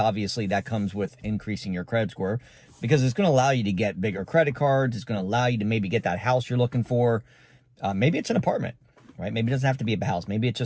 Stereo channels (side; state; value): both; identical; correlation 1.00